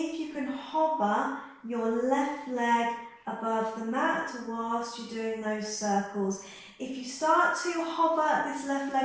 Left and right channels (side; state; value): both; identical; correlation 1.00